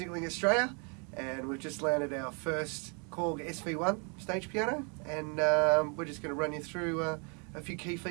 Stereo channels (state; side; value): quieter; left; 36.5 dB